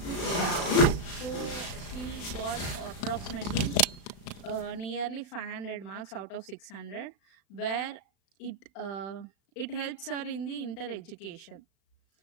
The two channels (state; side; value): late; right; 36 ms